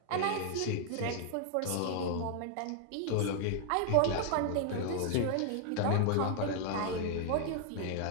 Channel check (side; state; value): both; different; correlation 0.00